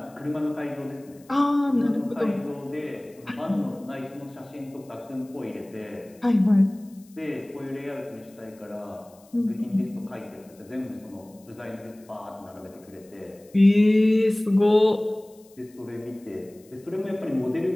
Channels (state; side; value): noise; left; hiss, 28 dB below the sound